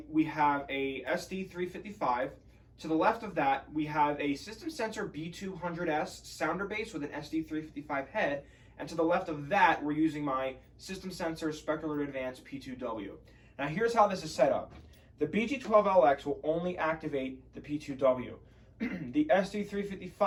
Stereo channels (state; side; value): identical; both; correlation 1.00